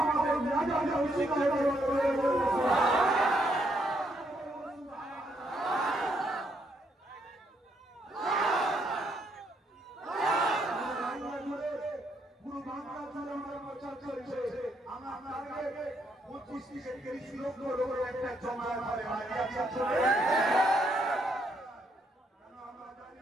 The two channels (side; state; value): both; normal; correlation 0.74